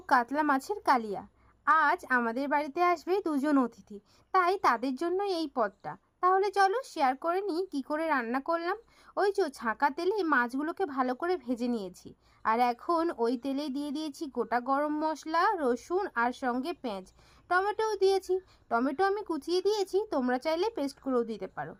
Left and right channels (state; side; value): identical; both; correlation 1.00